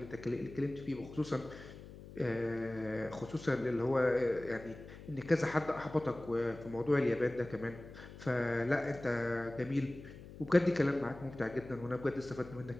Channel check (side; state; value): left; noise; hum, 15 dB below the sound